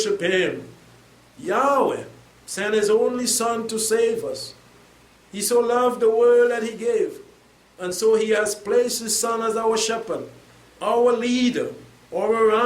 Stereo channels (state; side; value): identical; both; correlation 1.00